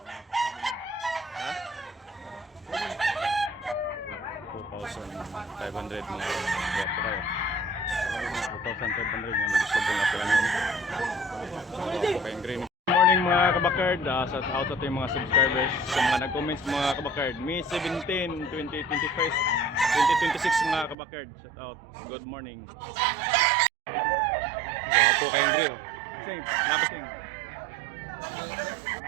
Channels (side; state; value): left; drops out; at 21.0 s